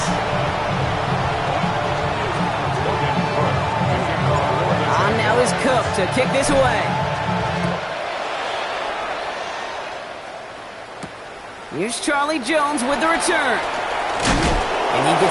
On now is Cook to kick this away. Here's Charlie Jones with the return. And he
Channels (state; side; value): identical; both; correlation 1.00